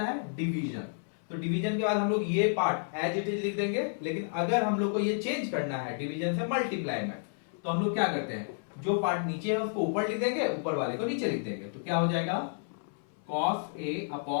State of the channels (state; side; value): silent; right; 57 dB below the other